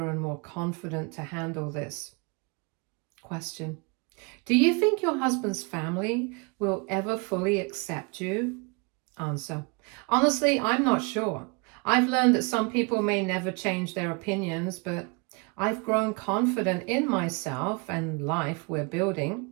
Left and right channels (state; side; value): quieter; left; 30.6 dB